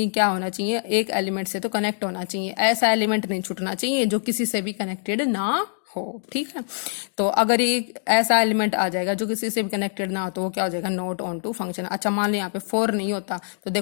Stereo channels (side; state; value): right; silent; digital silence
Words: क्या होना चाहिए, एक एलिमेंट से तो कनेक्ट होना चाहिए, ऐसा एलिमेंट नहीं छूटना चाहिए जो किसी से भी कनेक्टेड ना हो, ठीक है। तो अगर ये ऐसा एलिमेंट आ जाएगा जो किसी से भी कनेक्टेड ना हो तो वो क्या हो जाएगा नॉट ऑन टू फंक्शन। अच्छा मान लो यहाँ पे 4 नहीं होता तो